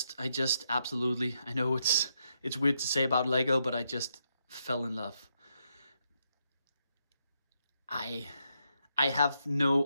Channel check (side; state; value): both; inverted; correlation -0.80